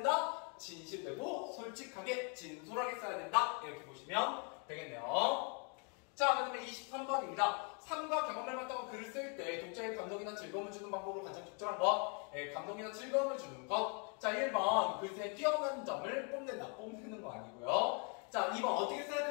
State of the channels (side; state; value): right; quieter; 37.4 dB